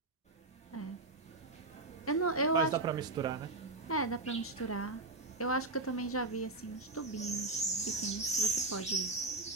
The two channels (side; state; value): left; quieter; 3.1 dB